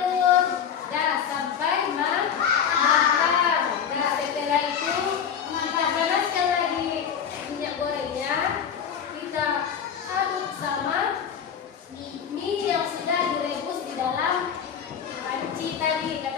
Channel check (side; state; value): right; quieter; 7.9 dB